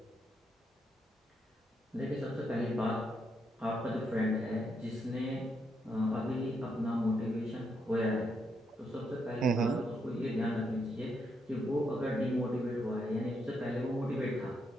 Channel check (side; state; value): both; normal; correlation 0.79